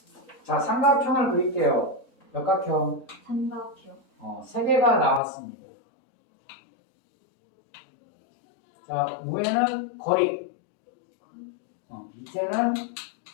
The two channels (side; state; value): right; drops out; at 5.2 s